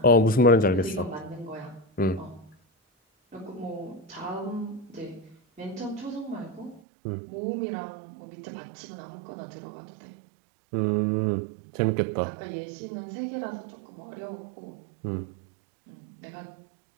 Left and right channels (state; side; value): drops out; left; at 6.8 s